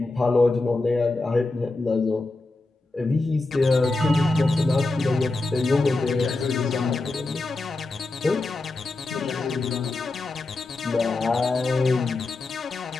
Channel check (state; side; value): quieter; right; 3.2 dB